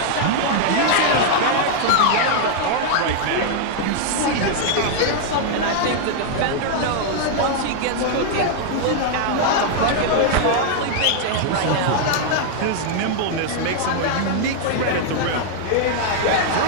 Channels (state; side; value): different; both; correlation 0.00